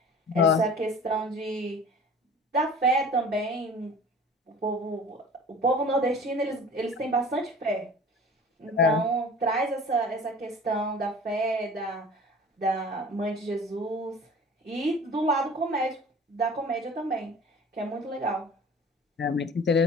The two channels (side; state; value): both; normal; correlation 0.43